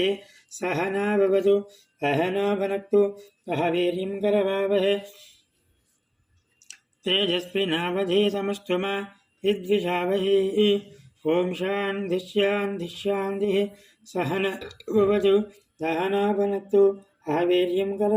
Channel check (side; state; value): both; identical; correlation 1.00